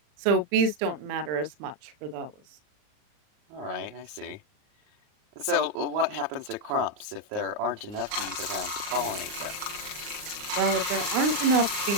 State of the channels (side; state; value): left; late; 39 ms